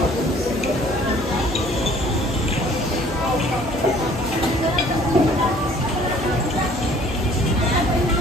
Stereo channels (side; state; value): both; normal; correlation 0.55